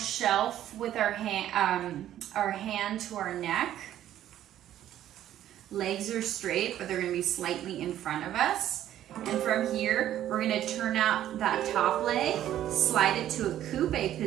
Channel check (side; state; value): left; quieter; 12.0 dB